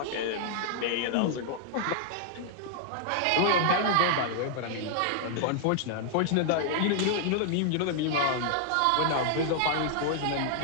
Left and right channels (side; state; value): both; different; correlation 0.00